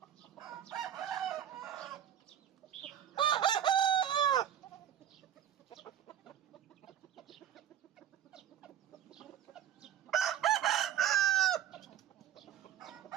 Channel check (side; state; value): left; quieter; 10.3 dB